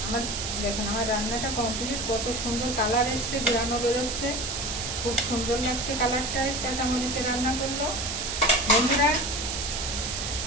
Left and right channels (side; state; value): right; noise; hiss, 4 dB below the sound